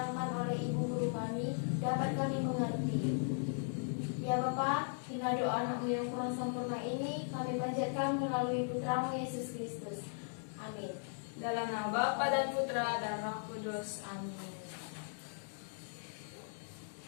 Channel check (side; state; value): right; silent; digital silence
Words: oleh Ibu Guru kami dapat kami mengerti. Ya Bapa, hingga doa anakmu yang kurang sempurna ini kami panjatkan melalui putramu Yesus Kristus. Amin. Dalam nama Bapa dan Putra dan Roh Kudus. Amin.